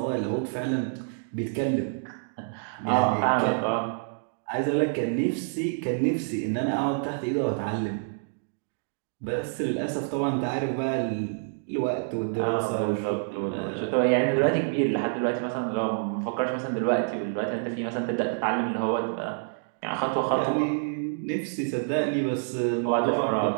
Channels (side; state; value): left; silent; digital silence